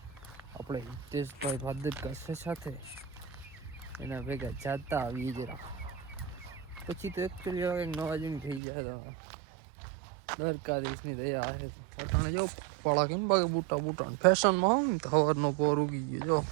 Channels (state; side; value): drops out; left; at 8.6 s